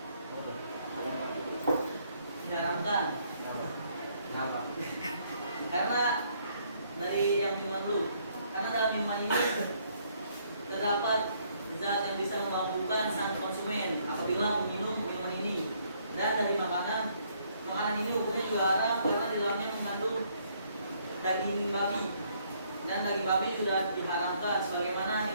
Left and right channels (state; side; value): inverted; both; correlation -0.68